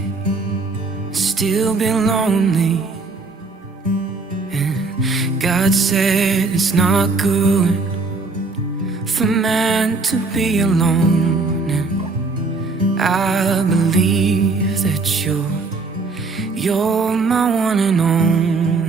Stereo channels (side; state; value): left; quieter; 3.8 dB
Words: still be lonely. God said it's not good for man to be alone. And I believe that you're my one and